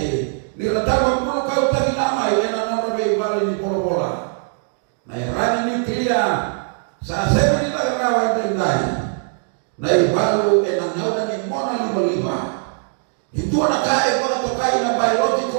Niratama puno kau tagi namay, na nona may ibalo ni bola-bola. Na irani nuklia, sa sebe nila karawan tinday. Na ibalo, na ngayon ni mona lima-lima. Ito na kaya mga tokay na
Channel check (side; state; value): left; silent; digital silence